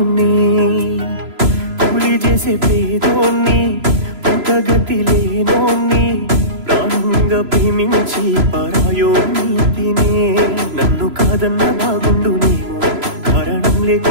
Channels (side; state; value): left; late; 3.0 ms